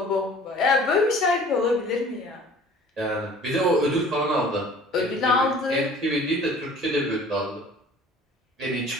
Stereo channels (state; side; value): normal; both; correlation 0.48